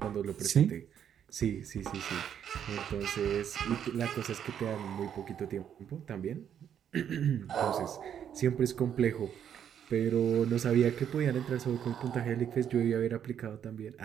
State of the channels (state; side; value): quieter; left; 9.0 dB